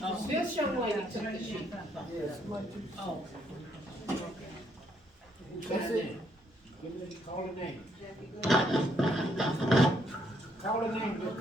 This young lady took the sheet. Oh. Who signed in? Call the name. Call the name, just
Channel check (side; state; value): both; normal; correlation 0.72